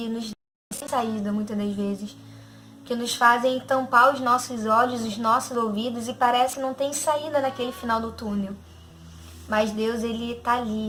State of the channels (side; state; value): both; identical; correlation 1.00